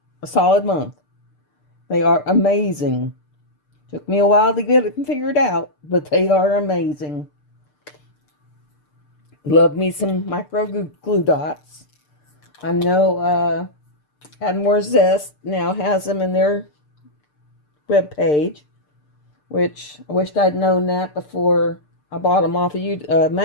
a solid month. They are amazing. Took me a while to get it figured out, but they are amazing. Love me some micro glue dots. I know Add More Zest now has them in their webpage, which I wished I'd known that before I bought them off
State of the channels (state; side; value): late; right; 6.7 ms